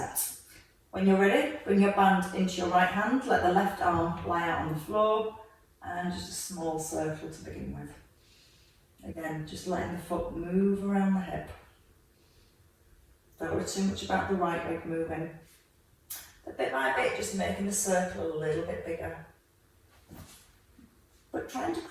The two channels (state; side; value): identical; both; correlation 1.00